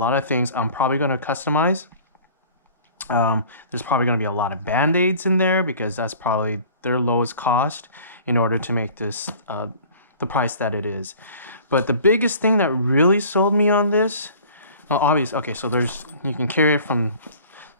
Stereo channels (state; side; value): inverted; both; correlation -0.47